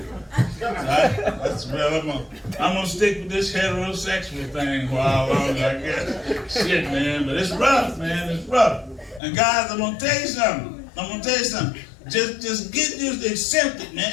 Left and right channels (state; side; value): drops out; right; at 9.2 s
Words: So that's well, I'm gonna stick with this heterosexual thing for how long I guess. Shit, man, but it's rough, man. It's rough. And guys, I'm gonna tell you something. Just get used to accept it, man.